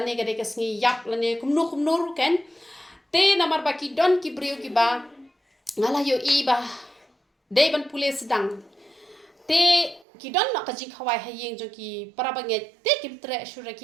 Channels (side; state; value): left; drops out; at 10.1 s